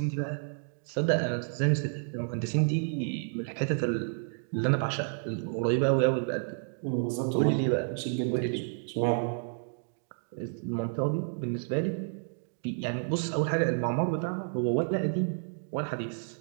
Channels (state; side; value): silent; left; digital silence